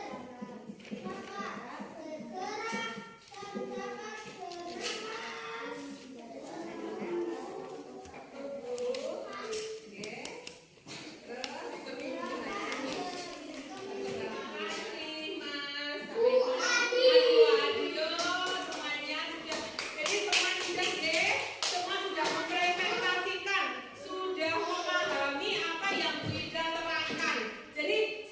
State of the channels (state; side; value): identical; both; correlation 1.00